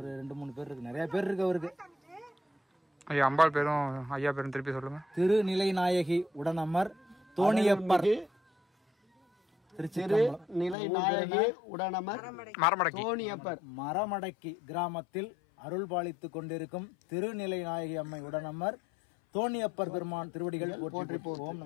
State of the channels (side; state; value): right; drops out; at 10.8 s